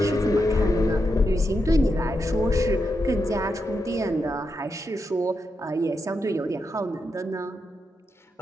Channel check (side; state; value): both; normal; correlation 0.85